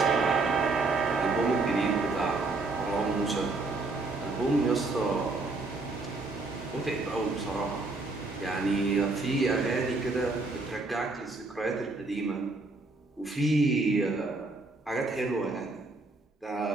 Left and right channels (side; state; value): left; quieter; 3.4 dB